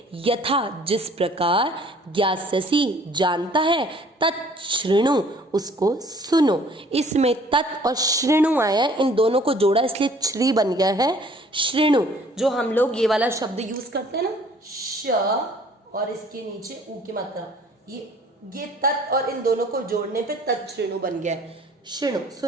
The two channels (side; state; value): both; normal; correlation 0.55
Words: यथा जिस प्रकार, ज्ञास्यसि जानता है, तच्छृणु उसको सुनो। इसमें तत् और श्रृणु आया है, इन दोनों को जोड़ा इसलिए श्री बन गया है श्रृणु। जो हम लोग ये वाला शब्द यूज करते हैं ना, श और इसके नीचे ऊ की मात्रा, ये तत् और इन दोनों को जोड़ने पे तच्छृणु बन गया है। श्रृणु